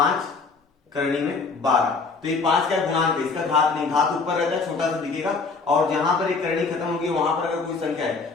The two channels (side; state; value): right; quieter; 4.4 dB